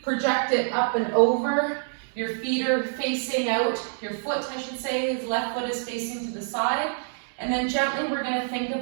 project it up and over. Your feet are facing out, your foot, I should say, his left foot is facing to the side. And then gently we're gonna think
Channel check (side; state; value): left; silent; digital silence